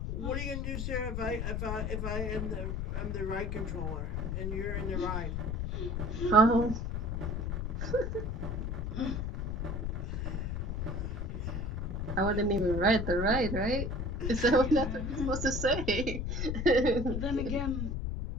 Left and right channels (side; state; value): left; noise; rumble, 2 dB below the sound